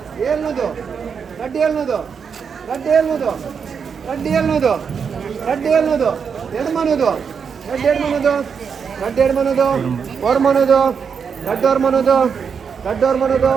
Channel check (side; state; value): left; quieter; 6.5 dB